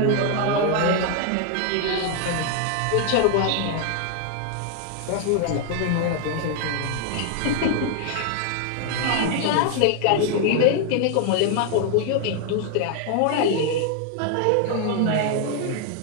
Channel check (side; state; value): both; different; correlation 0.00